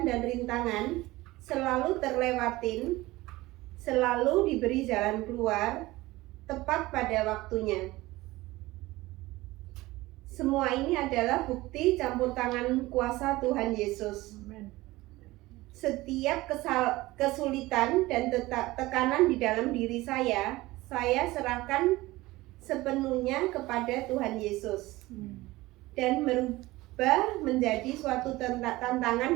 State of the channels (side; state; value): left; quieter; 19.2 dB